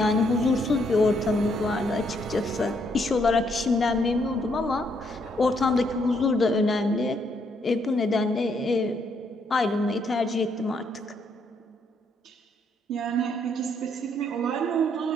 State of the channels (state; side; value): normal; both; correlation 0.73